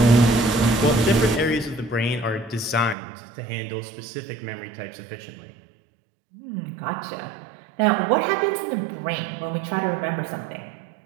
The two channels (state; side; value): drops out; left; at 3.0 s